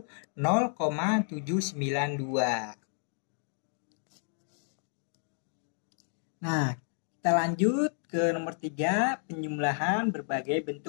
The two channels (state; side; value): silent; right; digital silence